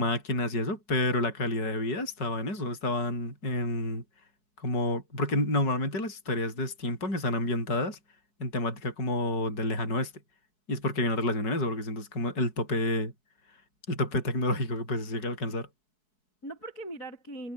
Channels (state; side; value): late; right; 4.7 ms